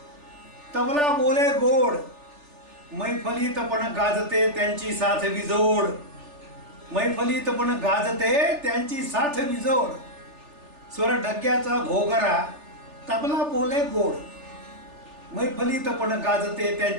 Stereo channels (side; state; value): left; late; 3.4 ms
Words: तबला बोले गोड मैफलीत पण गाजते त्यांची साथ विजोड. मैफलीत पण गाजते त्यांची साथ विजोड. स्वर डग्याचा घोगरा तबला बोले गोड मैफलीत पण गाजते